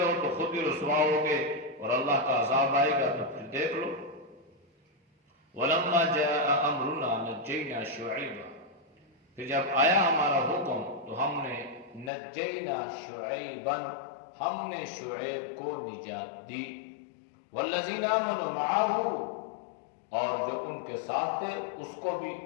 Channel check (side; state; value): right; drops out; at 12.1 s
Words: ہو تو خود ہی رسوا ہوگے اور اللہ کا عذاب آئے گا تو پھر دیکھ لو۔ وَلَمَّا جَاءَ أَمْرُنَا نَجَّيْنَا شُعَيْبًا، پھر جب آیا ہمارا حکم تو ہم نے نجینا شعیباً، ہم نے شعیب کو نجات دی، والذین آمنوا معہ، اور جو ان کے ساتھ تھے اس کو بھی